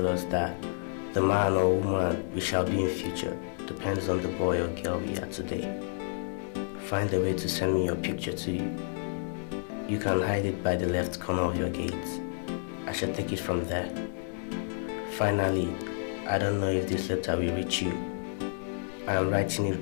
us, that the man or woman we shall be in future depends on the boy or girl we are today. Find a way to send me your picture to you. You can hide it by the left corner of your gate. I shall take it from there. Finally, I don't know if this letter will reach you. I am writing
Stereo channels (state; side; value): silent; right; 58 dB below the other